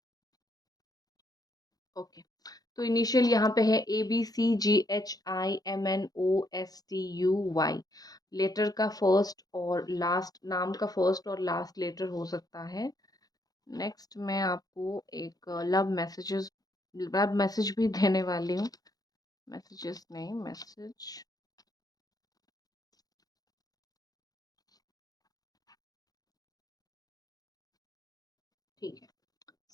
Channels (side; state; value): right; late; 0.18 ms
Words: ओके। तो इनिशियल यहाँ पे है ABCGHIMNOSTUY। लेटर का फर्स्ट और लास्ट, नाम का फर्स्ट और लास्ट लेटर हो सकता है। नेक्स्ट मैं आपको एक लव मैसेज भी देने वाली हूँ। मैसेजेस नहीं, मैसेज।